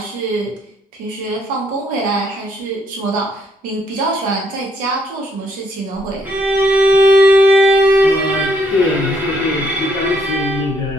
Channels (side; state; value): both; normal; correlation 0.69